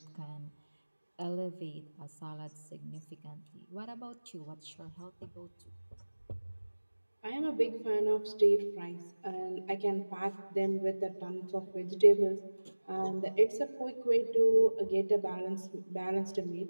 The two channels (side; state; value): both; inverted; correlation -1.00